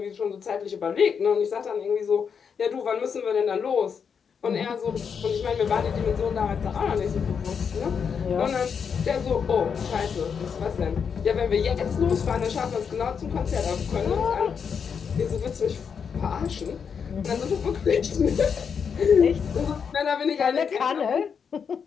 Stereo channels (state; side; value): quieter; right; 6.6 dB